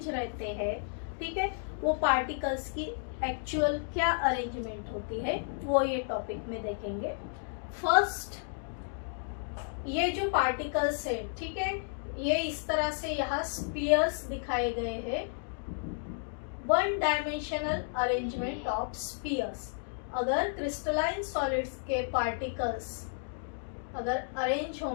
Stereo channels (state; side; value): silent; right; digital silence